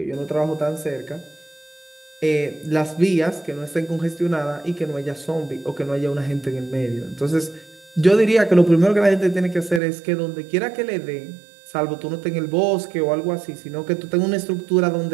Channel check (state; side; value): drops out; left; at 9.8 s